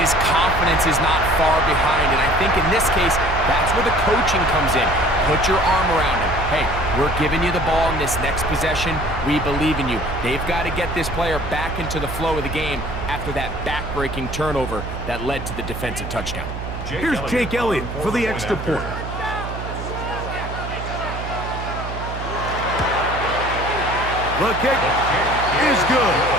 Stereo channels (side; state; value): right; noise; hum, 7 dB below the sound